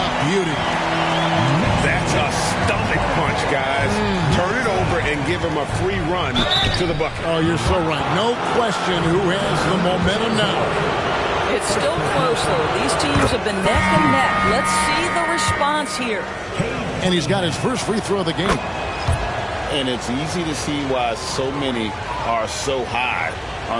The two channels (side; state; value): both; identical; correlation 1.00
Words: Beauty. That's a stomach punch, guys. Turn it over and give him a free run to the bucket. Oh, you're so right. No question who has the momentum now. It's still close, though. These teams have been neck and neck. Let's see the response here. And he's got his first free throw of the game. And it's easy to see why so many are so high